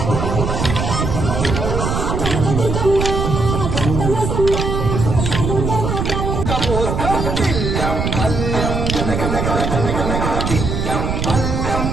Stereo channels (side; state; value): right; noise; rumble, 1 dB below the sound